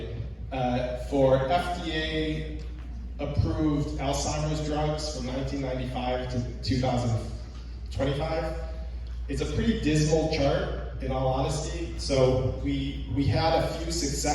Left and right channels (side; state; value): both; identical; correlation 1.00